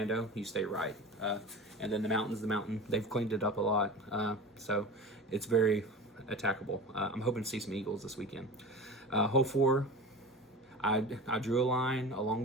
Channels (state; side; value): normal; both; correlation 0.33